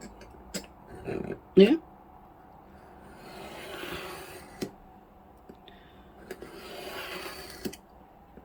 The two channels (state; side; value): identical; both; correlation 1.00